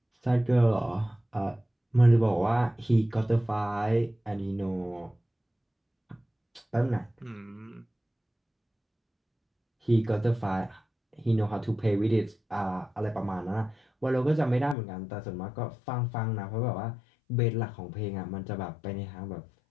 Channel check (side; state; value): right; drops out; at 14.8 s